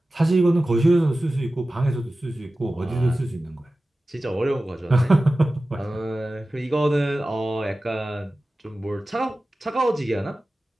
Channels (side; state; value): both; normal; correlation 0.95